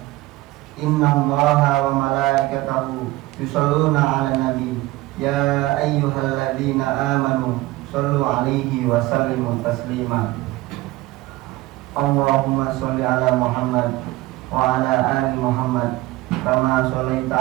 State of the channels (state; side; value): quieter; left; 18.9 dB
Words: inna Allaha wa malaikatahu yusalluna 'alan nabi يا أيها الذين آمنوا صلوا عليه وسلموا تسليما اللهم صل على محمد وعلى آل محمد كما صليت